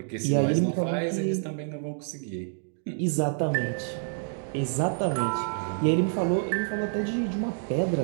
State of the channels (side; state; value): left; silent; digital silence